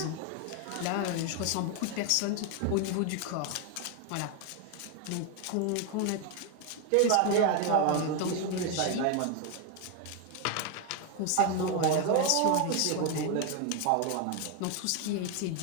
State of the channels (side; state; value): both; different; correlation 0.01